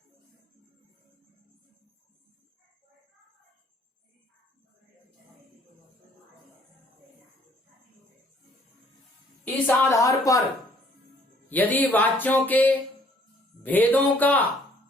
इस आधार पर यदि वाच्यों के भेदों का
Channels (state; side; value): normal; both; correlation 0.61